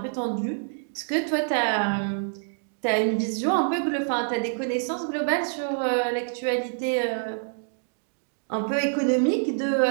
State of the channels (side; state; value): left; silent; digital silence